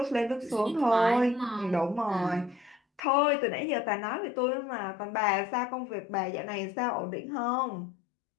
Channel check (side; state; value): right; drops out; at 3.0 s